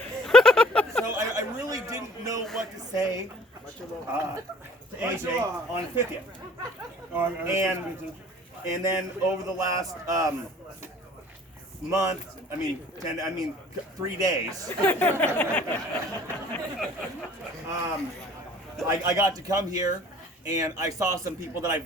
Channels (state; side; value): normal; both; correlation 0.51